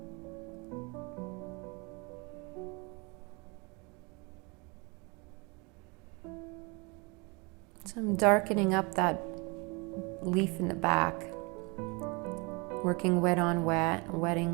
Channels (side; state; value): left; quieter; 29.6 dB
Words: So I'm darkening up that leaf in the back, working wet on wet, wetting